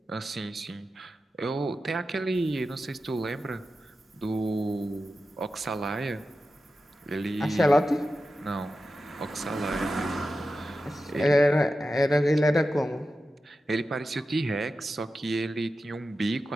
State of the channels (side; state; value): both; normal; correlation 0.92